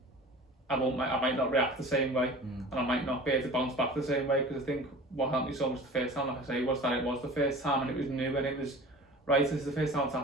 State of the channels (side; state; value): both; normal; correlation 0.40